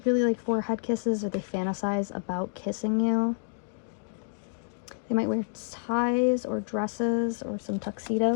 really like forehead kisses, or they fantasize about kissing you. They might wear ties or dresses or some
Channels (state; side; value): silent; right; digital silence